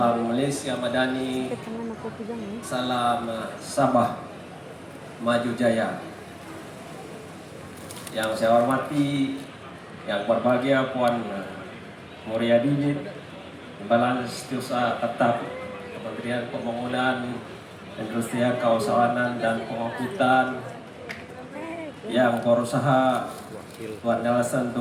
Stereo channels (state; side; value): identical; both; correlation 1.00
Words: Malaysia Madani, salam Sabah Maju Jaya. Yang saya hormati, yang berbahagia Puan Muria Didit, Timbalan Setiausaha Tetap Kementerian Pembangunan, Industrian, Kawasanan dan Pengangkutan, yang berusaha Tuan Nelson